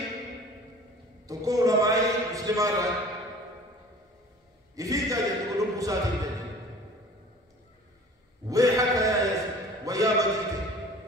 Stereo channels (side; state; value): both; normal; correlation 0.46